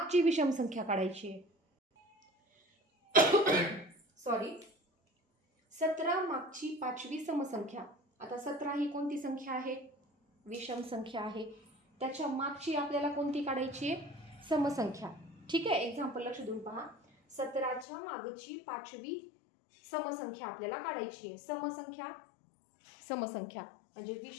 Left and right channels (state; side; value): drops out; right; at 17.9 s